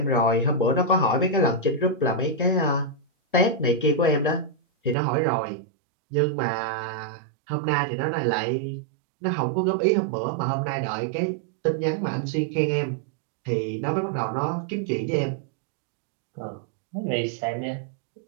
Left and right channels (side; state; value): left; drops out; at 5.0 s